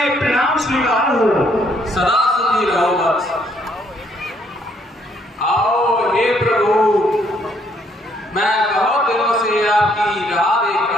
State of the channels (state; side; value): normal; both; correlation 0.68